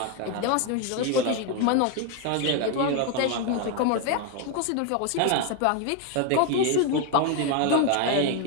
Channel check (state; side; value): different; both; correlation 0.01